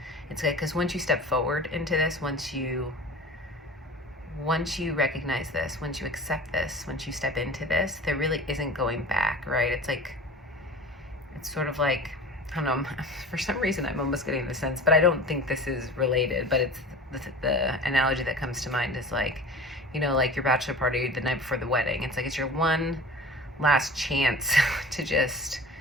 It's like, because once you step forward into this, once you once you recognize this, once you accept this, once you step into this, there really isn't going back, right? It's sort of like, I don't know, for some reason I'm almost getting the sense, but I don't think this is related, but it's the analogy that comes to mind is like, like your bachelor party the night before the wedding. It's like, it's your one last chance to just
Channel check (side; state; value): both; normal; correlation 0.38